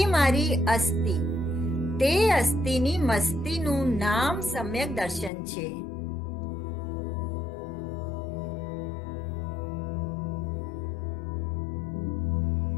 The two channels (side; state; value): right; drops out; at 5.3 s